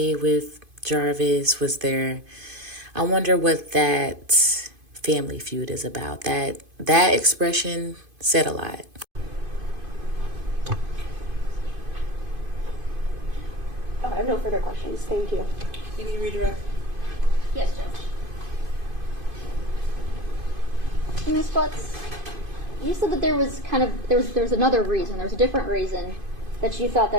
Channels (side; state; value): left; late; 2.5 ms